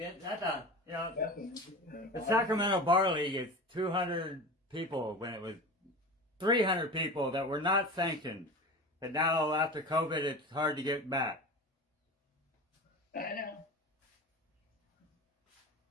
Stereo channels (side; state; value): both; normal; correlation 0.31